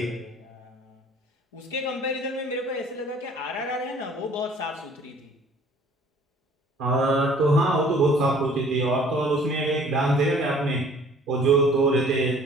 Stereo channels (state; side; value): normal; both; correlation 0.53